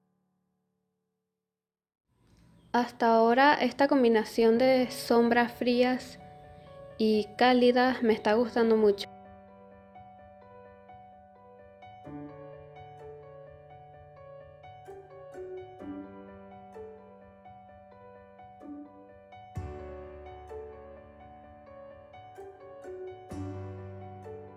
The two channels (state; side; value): identical; both; correlation 1.00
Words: Hasta ahora esta combinación de sombras frías y cálidas me está gustando mucho.